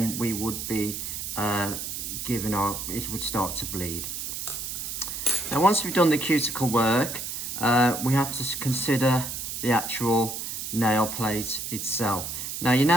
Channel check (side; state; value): right; noise; hiss, 5 dB below the sound